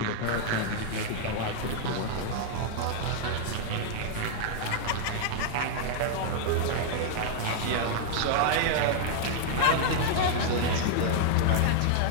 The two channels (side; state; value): both; different; correlation 0.00